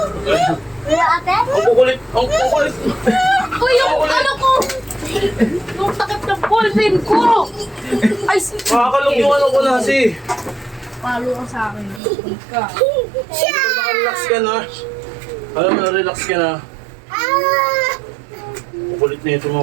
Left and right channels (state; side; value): drops out; left; at 12.0 s